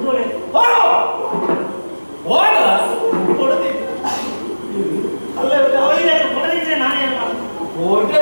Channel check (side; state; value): both; inverted; correlation -1.00